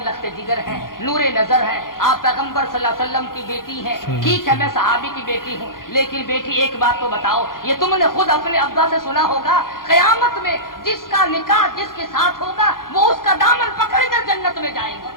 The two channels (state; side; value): late; right; 0.91 ms